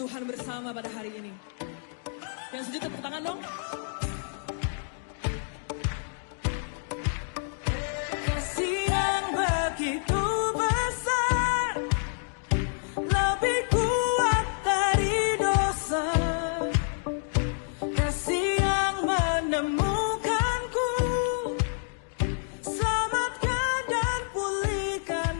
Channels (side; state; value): right; silent; digital silence